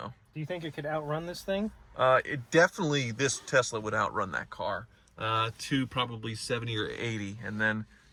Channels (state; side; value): identical; both; correlation 1.00